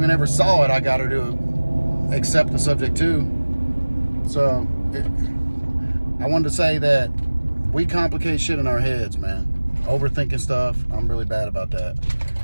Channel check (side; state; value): both; inverted; correlation -1.00